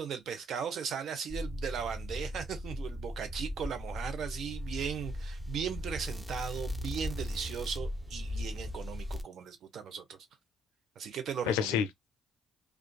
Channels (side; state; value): both; normal; correlation 0.67